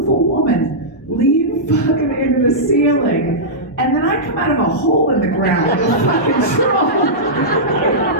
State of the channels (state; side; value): normal; both; correlation -0.13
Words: woman leave fucking into the ceiling. And then I come out of a hole in the ground with a fucking troll.